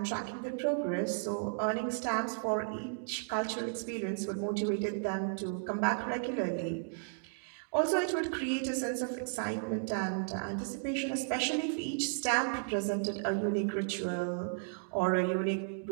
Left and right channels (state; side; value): silent; left; digital silence